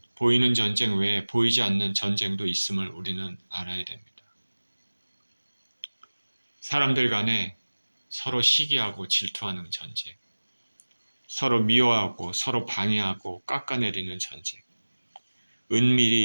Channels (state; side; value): inverted; both; correlation -1.00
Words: 보이는 전쟁 외에 보이지 않는 전쟁도 있음을 우리는 알아야 됩니다. 사람들 간에 서로 시기하고 질투하는 전쟁, 서로 미워하고 서로 방해하고 깎아내리는 전쟁,